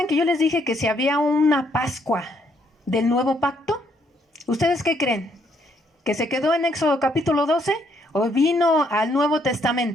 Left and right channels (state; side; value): normal; both; correlation 0.71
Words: que yo les dije que si había una Pascua del nuevo pacto? ¿Ustedes qué creen? ¿Que se quedó en Éxodo capítulo 12 o vino al Nuevo